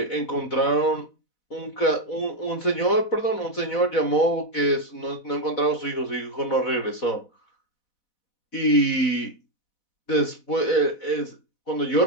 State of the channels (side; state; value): right; late; 4.1 ms